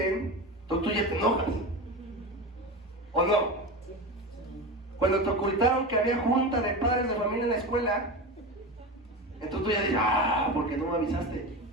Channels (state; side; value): normal; both; correlation 0.24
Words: tú ya te enojas, ¿o no? Cuando te ocultaron que había junta de padres de familia en la escuela, entonces tú ya dices, ¿por qué no me avisaste?